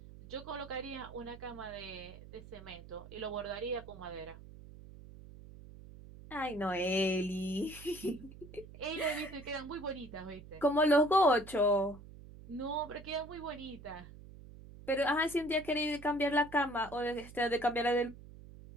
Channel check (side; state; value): right; noise; hum, 17 dB below the sound